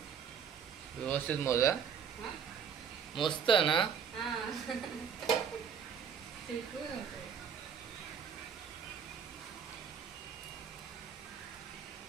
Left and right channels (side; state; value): left; quieter; 7.3 dB